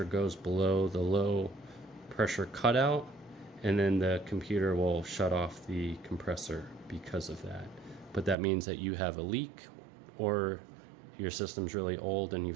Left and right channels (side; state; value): left; drops out; at 8.3 s